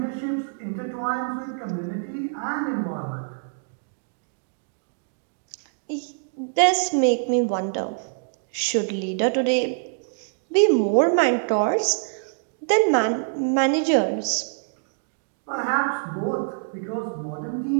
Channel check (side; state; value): left; silent; digital silence